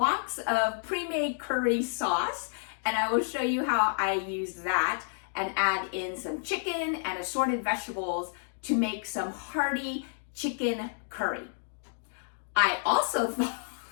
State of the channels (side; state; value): right; silent; digital silence